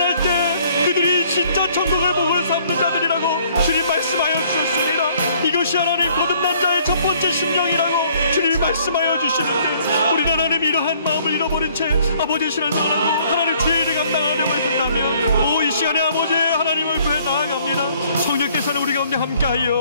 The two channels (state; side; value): inverted; both; correlation -0.61